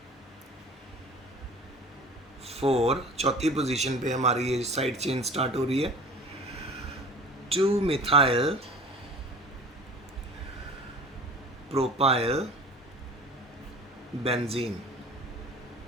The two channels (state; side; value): normal; both; correlation 0.42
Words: 4, चौथी पोजीशन पे हमारी ये साइड चेन स्टार्ट हो रही है, 2 मिथाइल प्रोपाइल बेंजीन।